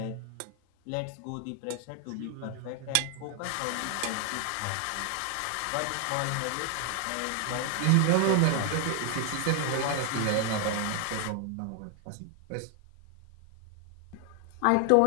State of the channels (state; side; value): different; both; correlation 0.00